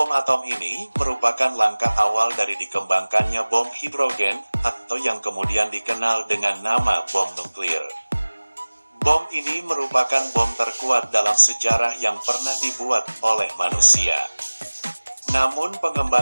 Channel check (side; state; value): both; inverted; correlation -1.00